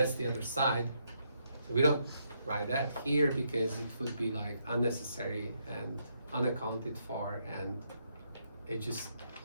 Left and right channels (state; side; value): inverted; both; correlation -0.77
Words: the other side. So we don't write that here because it would be like unnecessary and unaccounted for, and it just